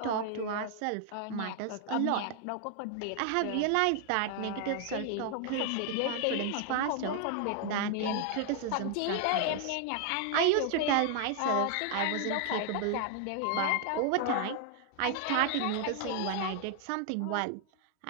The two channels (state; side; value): different; both; correlation 0.00